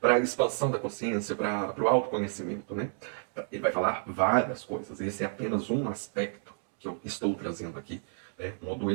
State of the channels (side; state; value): left; silent; 57 dB below the other